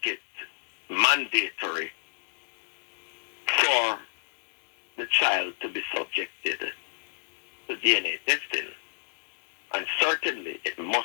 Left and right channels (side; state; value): right; silent; digital silence